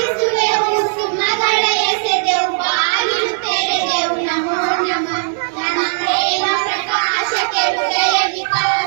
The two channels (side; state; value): left; silent; digital silence